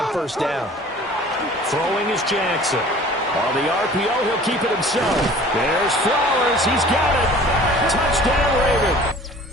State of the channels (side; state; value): both; normal; correlation 0.47